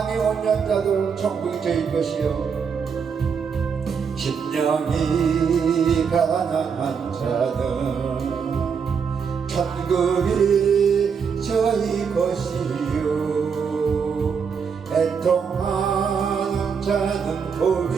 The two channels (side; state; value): left; quieter; 6.3 dB